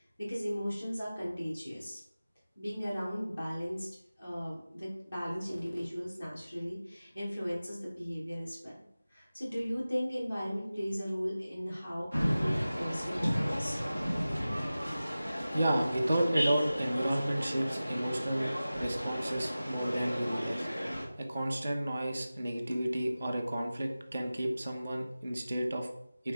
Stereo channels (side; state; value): both; inverted; correlation -0.96